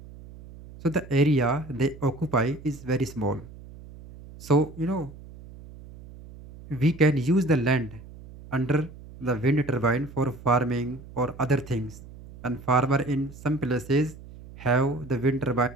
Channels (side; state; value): right; noise; hum, 17 dB below the sound